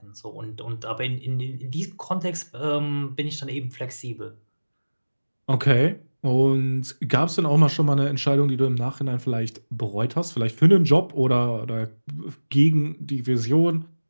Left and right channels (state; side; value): inverted; both; correlation -1.00